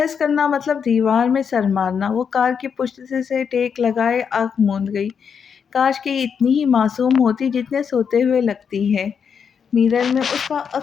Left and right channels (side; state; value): right; quieter; 6.8 dB